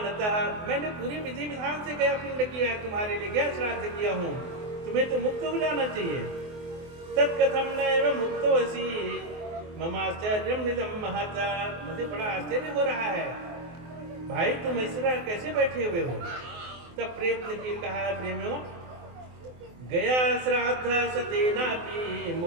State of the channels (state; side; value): late; left; 24 ms